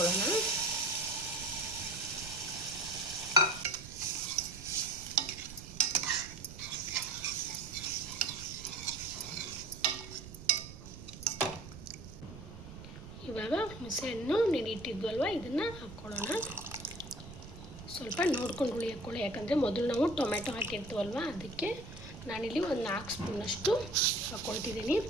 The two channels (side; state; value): right; noise; rumble, 14 dB below the sound